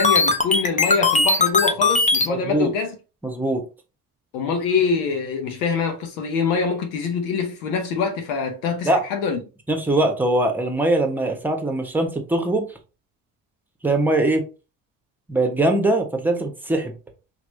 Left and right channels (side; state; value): both; normal; correlation 0.19